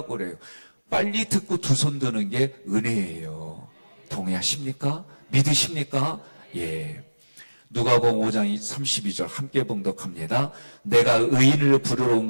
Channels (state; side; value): inverted; both; correlation -1.00